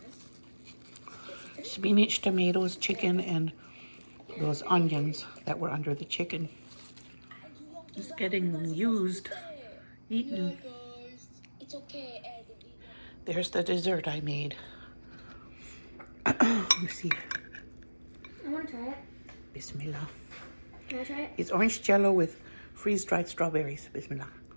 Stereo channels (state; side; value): inverted; both; correlation -1.00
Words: Spinach, tomatoes, chicken, and those onions that were under the chicken. It's getting used, eaten. There's the dessert I made. Let me see. I want to try it. Bismillah. Can I try it? It's orange Jell-O with freeze-dried strawberries. Bismillah.